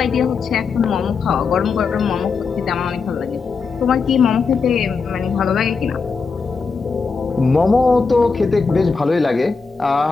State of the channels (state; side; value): quieter; right; 4.9 dB